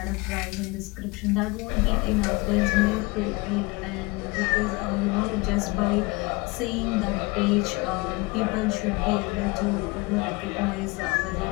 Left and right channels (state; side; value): quieter; right; 25.1 dB